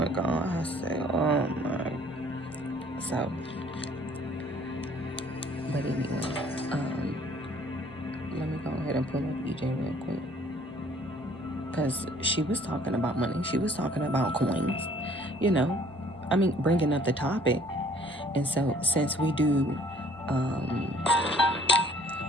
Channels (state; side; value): normal; both; correlation 0.58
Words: gone. I said, oh my. So, but anyway, let me go ahead and pull up EJ real quick, because she was talking about money. She was talking about coins. You know, I mean, bringing up the topic. And so, since we do,